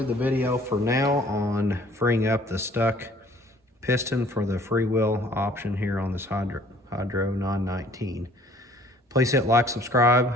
the video for now on freeing up the stuck piston for the freewheel option here on this Hydro 919. Please hit like, subscribe,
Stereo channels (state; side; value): normal; both; correlation 0.55